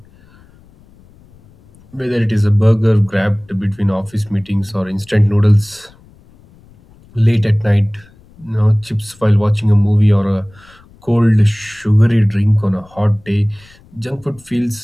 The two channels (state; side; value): noise; left; rumble, 27 dB below the sound